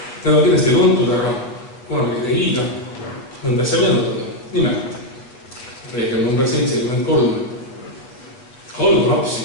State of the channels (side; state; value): right; late; 8.1 ms